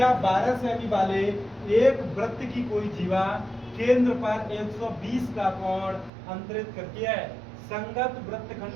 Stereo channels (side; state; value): left; drops out; at 6.1 s